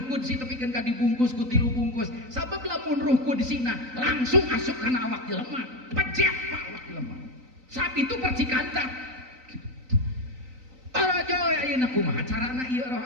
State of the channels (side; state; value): left; late; 3.9 ms